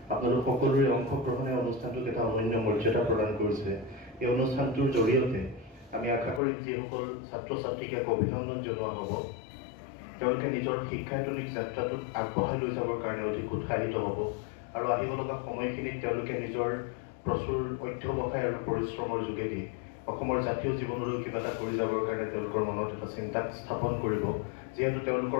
আপোনালোক সকলোৰে অংশগ্ৰহণে অনুষ্ঠানটোক এটা অনন্য মৰ্যাদা প্ৰদান কৰিছে। এই অনুষ্ঠানটোৰ জৰিয়তে আমি আশা কৰিম যিসকল ছাত্ৰ ছাত্ৰীক এক অভিনন্দন জনোৱা হ'ব, তেওঁলোকে নিজৰ শিক্ষায়তনিক যাত্ৰাটোক আগবঢ়াই লৈ যাবৰ কাৰণে অধিক উৎসাহিত হ'ব আৰু আহিব লগা সময়খিনিত তেওঁলোকে নিজৰ প্ৰচুৰ অধ্যৱসায় আৰু পৰিশ্ৰমৰ যোগেদি অসমৰ জাতীয় জীৱনলৈ কিবা এটা কৰি যাবৰ কাৰণে তেওঁলোকৰ মনত এটা চিন্তা স্থাপন কৰিব। যিহেতু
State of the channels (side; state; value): right; drops out; at 6.4 s